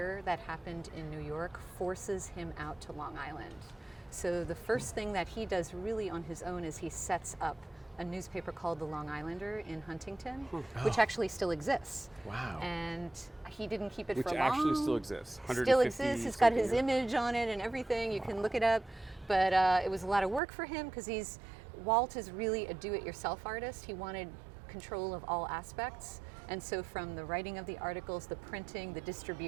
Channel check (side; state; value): left; drops out; at 20.4 s